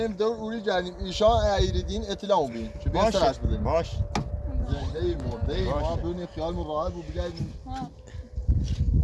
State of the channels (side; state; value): both; identical; correlation 1.00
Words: دور اولی جردیم ایشان ایریدین اطلاع بین چه بهترش بدیم باش زنده مرده ما بدون خیال مراقب بود بگردیم